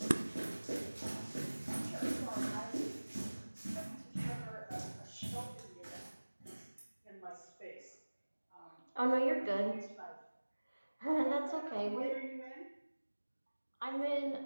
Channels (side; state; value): both; inverted; correlation -1.00